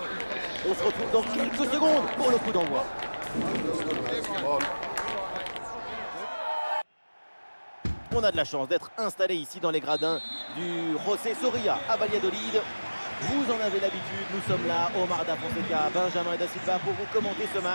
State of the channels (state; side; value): inverted; both; correlation -1.00